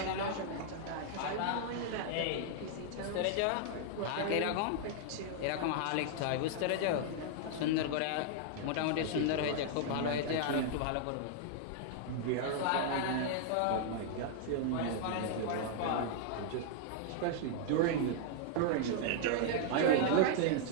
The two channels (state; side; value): different; both; correlation -0.01